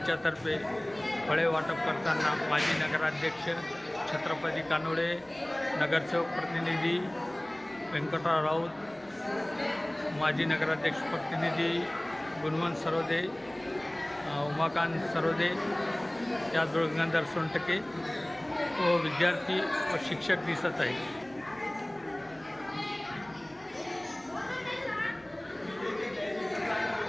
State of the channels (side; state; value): right; noise; rumble, 29 dB below the sound